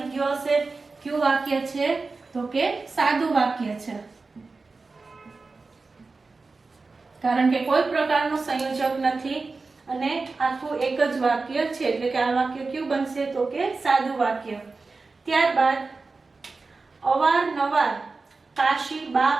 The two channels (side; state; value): left; quieter; 3.9 dB